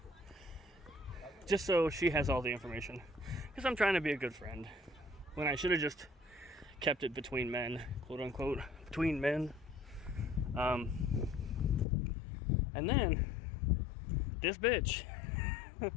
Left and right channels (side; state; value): right; drops out; at 11.9 s